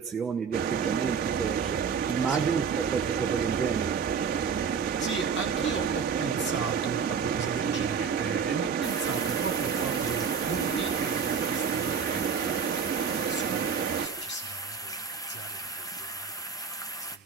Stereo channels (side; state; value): left; quieter; 6.3 dB